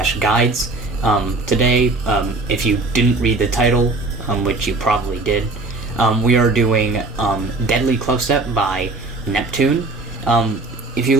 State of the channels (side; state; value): left; quieter; 3.2 dB